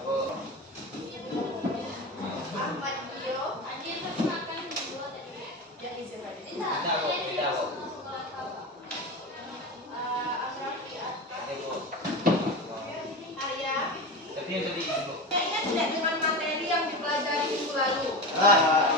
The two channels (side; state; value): both; normal; correlation 0.25